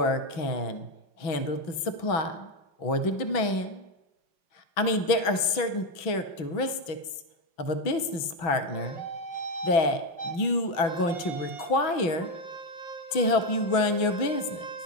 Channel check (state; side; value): late; right; 6.1 ms